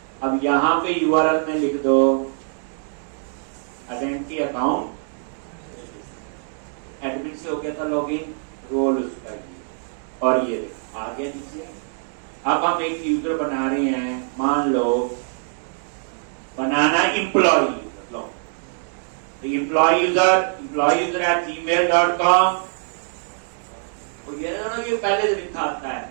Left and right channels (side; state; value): left; silent; 63 dB below the other